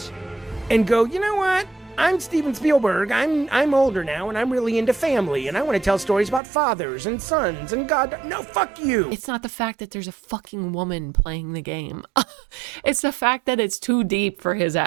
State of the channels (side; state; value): left; drops out; at 6.4 s